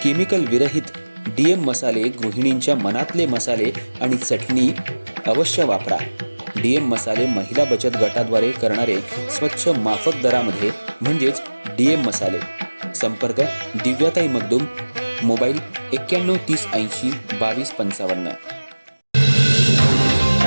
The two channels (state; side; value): inverted; both; correlation -1.00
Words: केमिकल विरहित डीएम मसाले, गृहिणींच्या मनातले मसाले आणि चटणी अवश्य वापरा. डीएम मसाले महिला बचत गटाद्वारे करणारे स्वच्छ माफक दरामध्ये म्हणजेच डीएम मसाले. संपर्क दिव्याताई मगदूम, मोबाईल 9130802255.